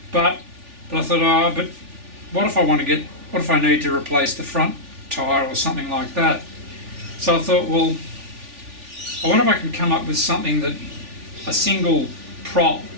But I thought, oh, but what if I need to replace the front tyre or something like that? So I thought, well, I wonder if I can come up with something that a single prop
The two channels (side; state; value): left; late; 3.4 ms